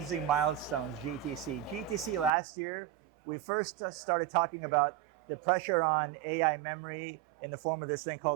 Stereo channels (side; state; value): left; drops out; at 2.3 s